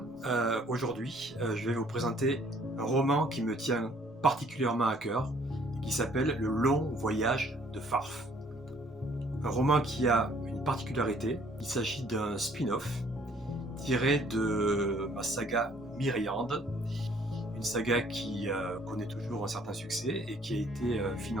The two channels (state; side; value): normal; both; correlation 0.60